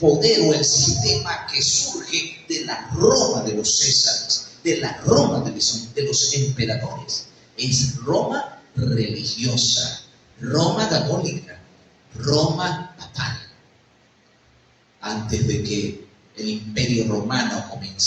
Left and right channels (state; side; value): identical; both; correlation 1.00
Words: o el sistema que surge de la Roma de los Césares, de la Roma de los emperadores? Es Roma religiosa, Roma católica, Roma papal. Antes de que el imperio romano